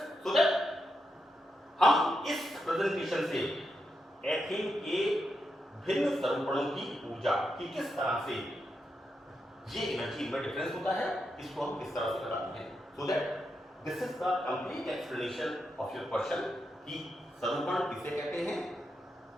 so that हम इस प्रेजेंटेशन से एथेन के भिन्न स्वरूपणों की ऊर्जा की किस तरह से ये एनर्जी में डिफरेंस होता है, इसको हम किस तरह से बताते हैं, so that this is the complete explanation of your question कि स्वरूपण किसे कहते हैं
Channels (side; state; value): both; normal; correlation 0.85